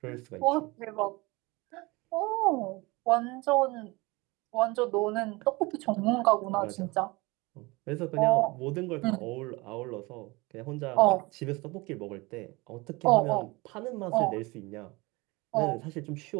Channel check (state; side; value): quieter; left; 24.1 dB